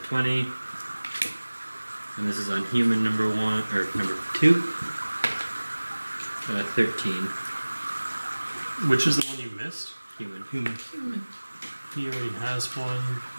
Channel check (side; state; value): both; inverted; correlation -1.00